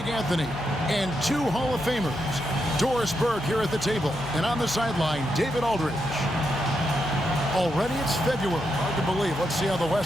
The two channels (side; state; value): left; noise; hum, 13 dB below the sound